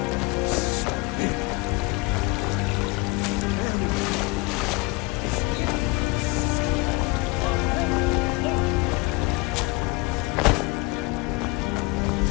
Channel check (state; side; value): quieter; right; 24.8 dB